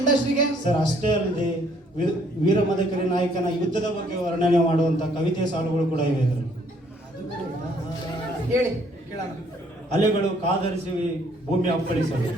ಇಂಡಸ್ಟ್ರಿಗೆ? ಸರ್, ಅಷ್ಟೇ ಅಲ್ಲದೆ ವೀರಮದಕರಿ ನಾಯಕನ ಯುದ್ಧದ ಬಗ್ಗೆ ವರ್ಣನೆ ಮಾಡುವಂತ ಕವಿತೆ ಸಾಲುಗಳು ಕೂಡ ಇವೆ ಇದರಲ್ಲಿ. ಹೇಳಿ ಕೇಳೋಣ. ಅಲೆಗಳು ಕಾದರಿಸಿ ಭೂಮಿ ಅಪ್ಪಳಿಸಲು,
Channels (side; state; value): both; normal; correlation 0.64